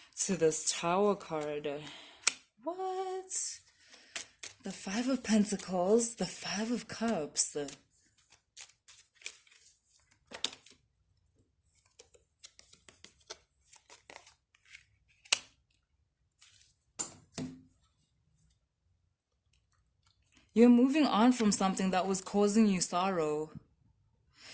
to this Tower card. What? The Five of Pentacles, the Five of Cups. You're moving on from something that was causing you sorrow.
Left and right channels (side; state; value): both; identical; correlation 1.00